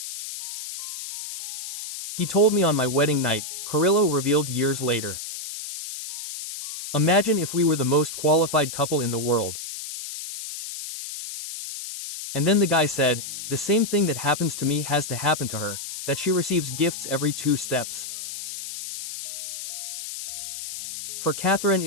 He told me on my wedding night, Carrillo revealed years later. Imagine if we were the most qualified couple in the world. And then the guy said, the same thing that happens to me has to happen to her, that she receives gifts every 2 steps. For Catherine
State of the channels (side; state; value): left; noise; hiss, 9 dB below the sound